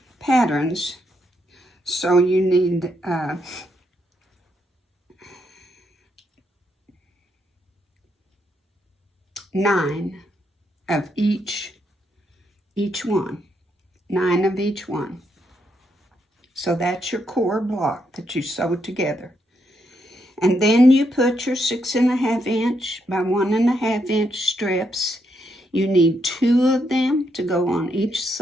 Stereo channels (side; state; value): both; normal; correlation 0.79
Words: patterns, so you need 9 of each one. 9 of each one. So that's your core block that you sewed together. And then you put your 6½ inch by 1½ inch strips. You need 2 of them to go on each